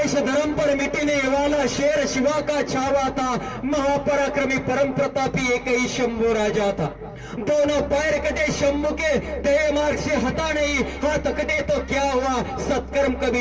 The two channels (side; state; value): both; identical; correlation 1.00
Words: धर्म पर मिटीने वाला शेर शिवा का छावा था, महापराक्रमी परम प्रतापी एक ही शंभू राजा था. दोनों पैर कटे शंभू के, दे मार्ग से हटा नहीं, हाथ कटे तो क्या हुआ, सत्कर्म